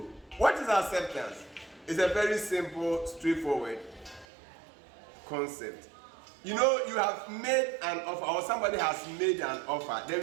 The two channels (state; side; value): drops out; left; at 4.2 s